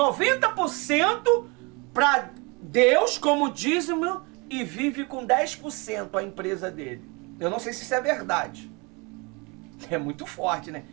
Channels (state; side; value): quieter; left; 29.0 dB